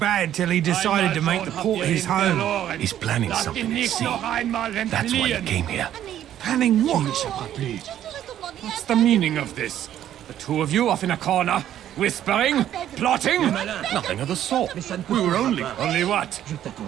till he decided to make the port his home. He's planning something at sea. That's why he came here. Planning what? What's the meaning of this? The two of you off in a corner, whispering, plotting? Nothing of the sort. We were only what?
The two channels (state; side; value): quieter; left; 11.3 dB